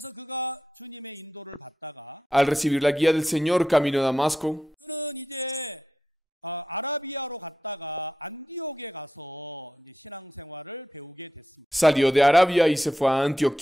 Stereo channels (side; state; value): both; normal; correlation 0.87